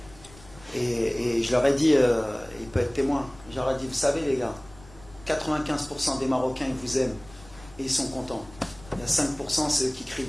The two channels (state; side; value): noise; left; rumble, 22 dB below the sound